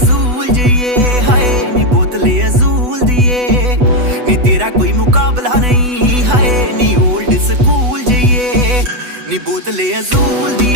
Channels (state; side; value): late; left; 8.1 ms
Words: ਜਈਏ ਹਾਏ ਨੀ ਬੋਤਲੇ ਅਜ਼ੂਲ ਦੀਏ ਨੀ ਤੇਰਾ ਕੋਈ ਮੁਕਾਬਲਾ ਨਹੀਂ ਹਾਏ ਨੀ ਓਲਡ ਸਕੂਲ ਜਈਏ ਨੀ ਬੋਤਲੇ ਅਜ਼ੂਲ